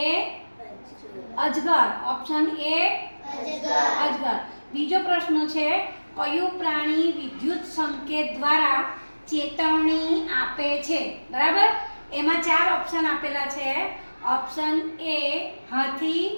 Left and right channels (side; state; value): both; inverted; correlation -1.00